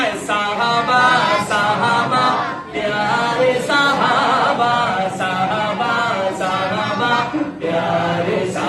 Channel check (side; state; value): both; identical; correlation 1.00